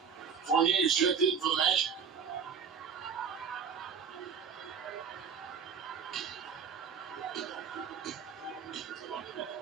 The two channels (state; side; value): quieter; left; 6.6 dB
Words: Fournier's checked in for the Magic.